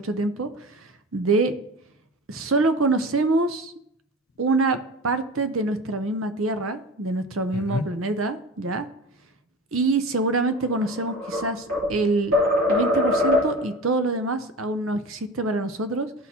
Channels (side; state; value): both; normal; correlation 0.33